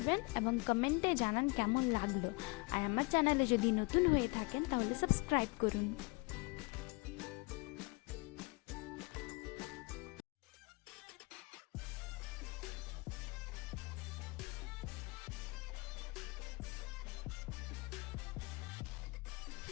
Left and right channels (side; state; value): right; quieter; 28.1 dB